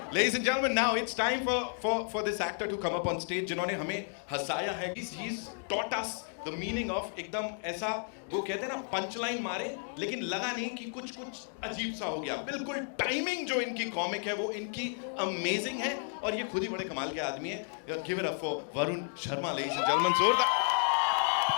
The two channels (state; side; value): silent; right; 56 dB below the other